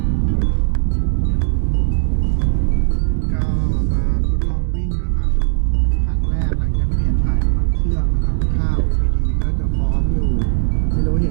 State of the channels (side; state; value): left; silent; digital silence